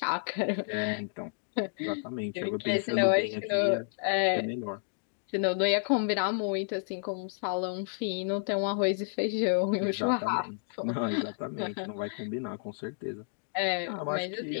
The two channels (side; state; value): right; silent; digital silence